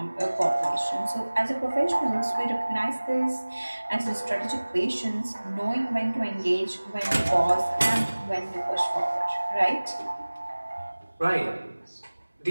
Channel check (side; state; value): both; inverted; correlation -1.00